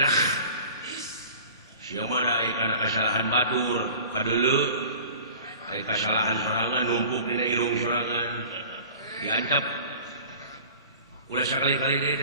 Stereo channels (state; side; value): inverted; both; correlation -0.43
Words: sia mah da aya kana kasalahan batur kadeuleu aya kasalahan sorangan numpuk dina irung sorangan diancap ulah sakali-kali deui